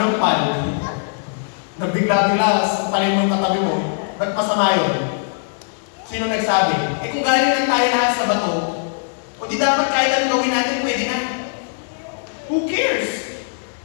Nabigla-bigla sa paling mong katabi mo. Ba't masama yun? Sino nagsabi? Kung galing lang tayo lahat sa bato, o di dapat kahit anong gawin natin, pwede na. Who cares?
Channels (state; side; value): silent; right; digital silence